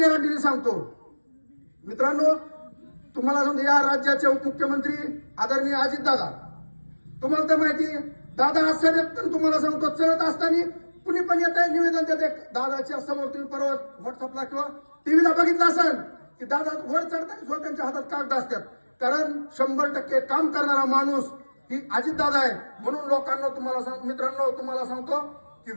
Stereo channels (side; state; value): both; inverted; correlation -1.00